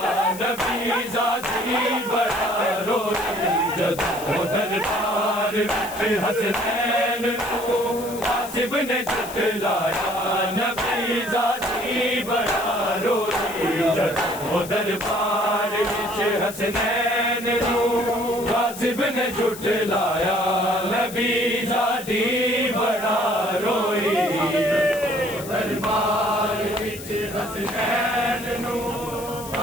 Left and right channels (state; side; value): noise; left; hiss, 13 dB below the sound